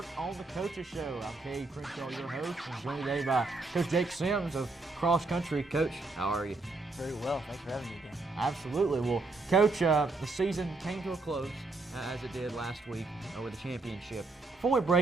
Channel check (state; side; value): quieter; left; 3.4 dB